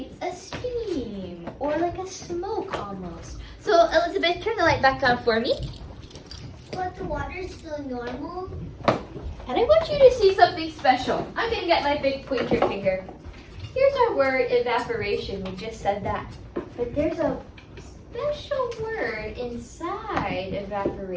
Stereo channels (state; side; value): identical; both; correlation 1.00